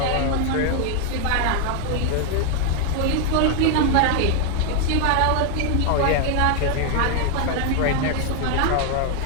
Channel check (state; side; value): different; both; correlation 0.00